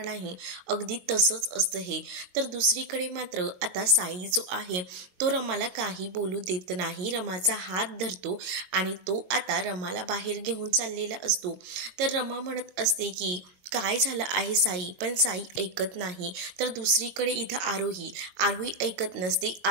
नाही, अगदी तसंच असतं हे. तर दुसरीकडे मात्र आता साई जो आहे तो रमाला काही बोलू देत नाही. रमाचा हात धरतो आणि तो आता रमाला बाहेर घेऊन चाललेला असतो. तर रमा म्हणत असते की काय झालं आहे साई, पण साई ऐकत नाही. तर दुसरीकडे इथं आरोही ऐकत नसते.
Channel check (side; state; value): left; late; 22 ms